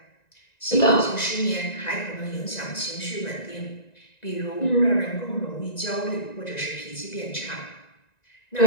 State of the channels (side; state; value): right; late; 1.9 ms